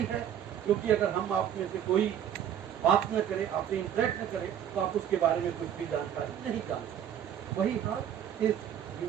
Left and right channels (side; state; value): left; quieter; 9.7 dB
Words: है, क्योंकि अगर हम आप में से कोई बात न करे, आपसे इंटरेक्ट न करे, तो आप उसके बारे में कुछ भी जानकारी नहीं जान सकते। वही हाल इस